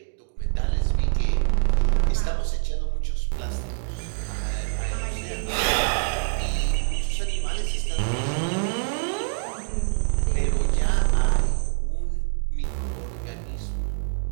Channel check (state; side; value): silent; left; digital silence